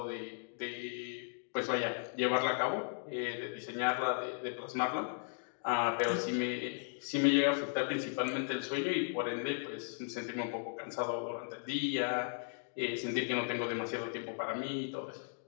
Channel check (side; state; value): right; silent; digital silence